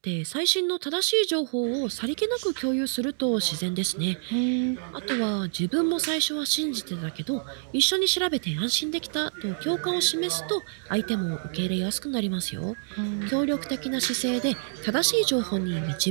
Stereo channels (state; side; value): silent; left; digital silence